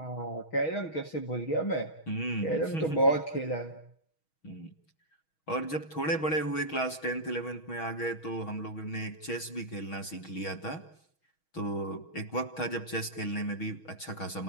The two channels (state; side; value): late; right; 6.3 ms